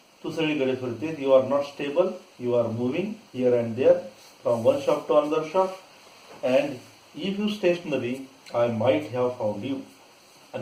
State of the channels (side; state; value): both; identical; correlation 1.00